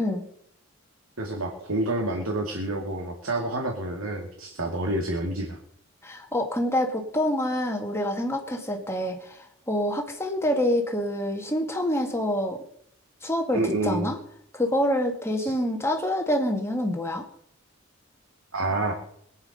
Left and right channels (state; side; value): normal; both; correlation 0.48